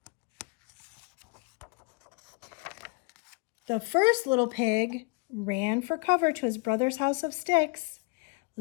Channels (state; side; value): quieter; right; 30.2 dB